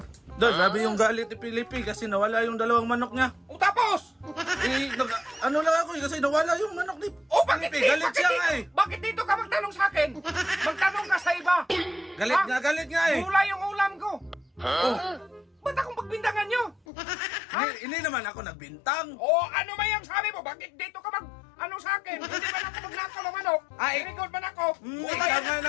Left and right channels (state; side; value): drops out; right; at 16.8 s